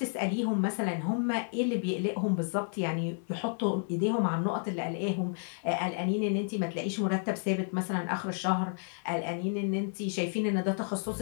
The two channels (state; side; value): silent; right; 57 dB below the other